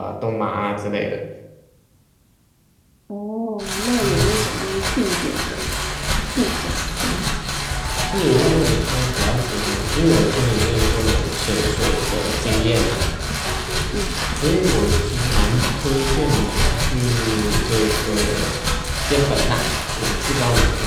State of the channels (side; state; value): both; identical; correlation 1.00